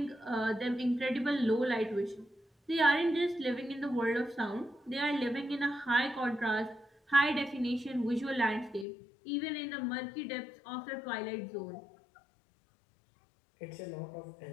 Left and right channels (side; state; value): right; drops out; at 8.8 s